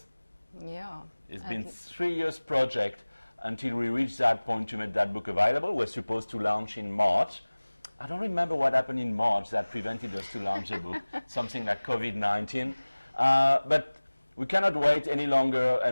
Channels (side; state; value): both; inverted; correlation -1.00